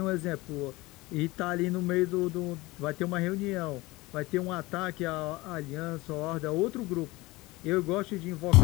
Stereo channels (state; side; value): quieter; right; 21.1 dB